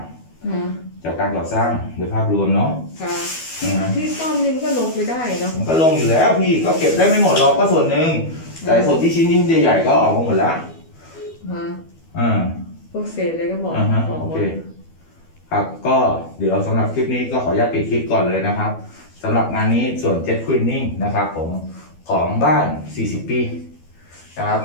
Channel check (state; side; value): late; right; 12 ms